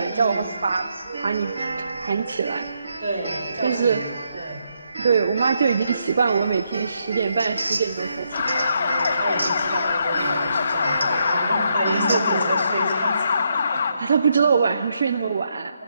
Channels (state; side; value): inverted; both; correlation -0.78